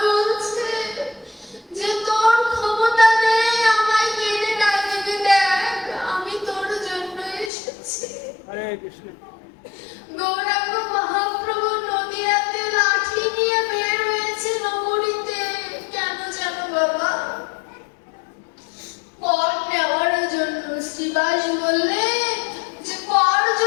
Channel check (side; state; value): right; drops out; at 7.5 s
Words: বলছে যে তোর ক্ষমতা নেই আমায় কেড়ে ডাকবি, দেখ আমি তোর জন্য এসেছি। হরে কৃষ্ণ। গৌরাঙ্গ মহাপ্রভু নদিয়াতে লাঠি নিয়ে বের হয়েছে নগরীতে। কেন জানো বাবা? কর নেওয়ার জন্য। শ্রীবাস বললে যে কর